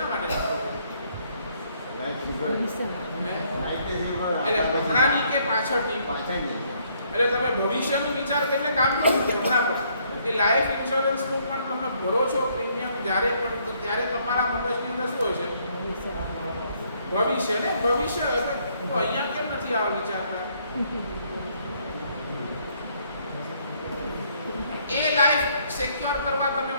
માટે નાખો છો? એટલે હમણાંની કે પાછળની? એટલે તમે ભવિષ્યનું વિચાર કરીને કામ કરો છો હમણાં પણ. એ લાઈફ ઇન્સ્યોરન્સનું પણ તમે ભરો છો પ્રીમિયમ જ્યારે પણ, તો ત્યારે તમારા મગજની અંદર શું હોય છે? ભવિષ્ય ને ભવિષ્ય. તો અહીંયા કેમ નથી આવો વિચારતા? એ લાઈફ સિક્યોર કરવા તમે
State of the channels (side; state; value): both; inverted; correlation -0.68